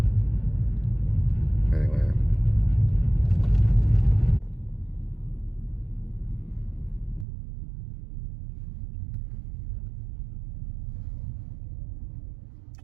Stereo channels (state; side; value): drops out; left; at 7.2 s